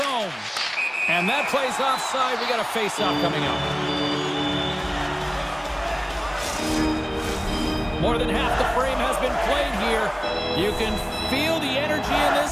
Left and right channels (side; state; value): both; identical; correlation 1.00